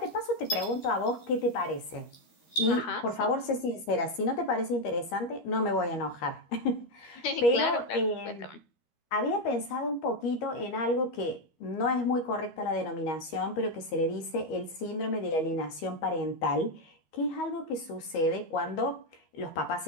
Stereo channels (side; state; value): right; late; 13 ms